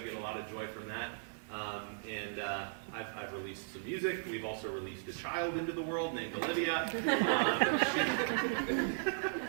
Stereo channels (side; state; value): left; silent; 53 dB below the other